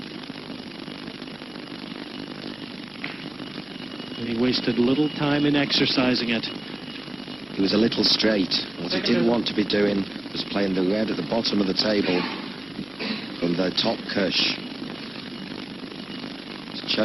And he wasted little time in exercising it. He was a little straight. What he didn't want to be doing was playing the red at the bottom of the table from the top cush. He's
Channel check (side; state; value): right; noise; hum, 30 dB below the sound